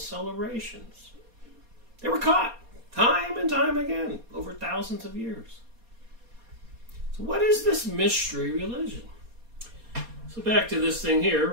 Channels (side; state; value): left; late; 4.2 ms